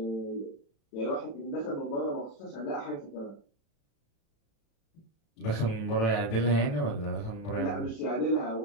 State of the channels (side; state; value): right; late; 36 ms